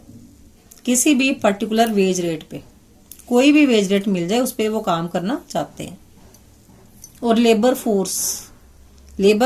किसी भी पर्टिकुलर वेज रेट पे, कोई भी वेज रेट मिल जाए उस पर वो काम करना चाहते हैं। और लेबर फोर्स,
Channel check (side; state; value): both; identical; correlation 1.00